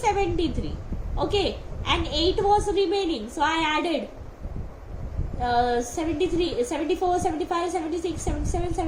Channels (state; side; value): identical; both; correlation 1.00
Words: Okay, and 8 was remaining, so I added 73, 74, 75, 76, 77,